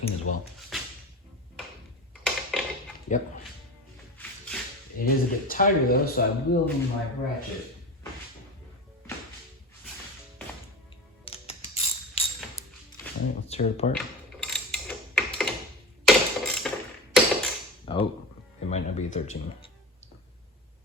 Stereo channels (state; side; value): normal; both; correlation 0.29